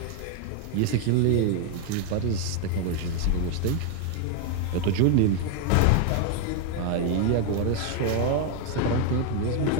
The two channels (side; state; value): both; different; correlation 0.01